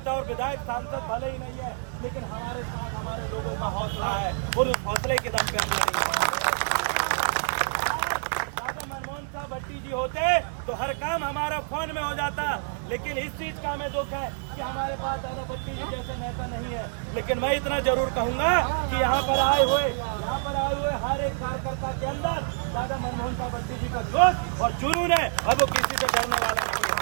और विधायक सांसद भले ही नहीं है, लेकिन हमारे साथ हमारे लोगों का हौसला है और उस हौसले के दम पे हम लड़ेंगे। मनमोहन साहब भट्टी जी होते तो हर काम हमारा फोन में हो जाता, लेकिन इस चीज का हमें दुख है कि हमारे पास दादा भट्टी जी जैसे नेता नहीं है। लेकिन मैं इतना जरूर कहूंगा कि यहाँ पर आए हुए हर एक कार्यकर्ता के अंदर दादा मनमोहन साहब भट्टी जी का जोश और जुनून है, और वो किसी से डरने वाला नहीं है।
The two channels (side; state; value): left; silent; digital silence